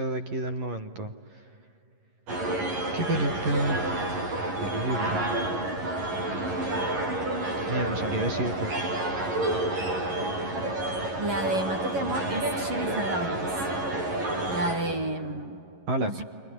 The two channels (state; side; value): late; left; 11 ms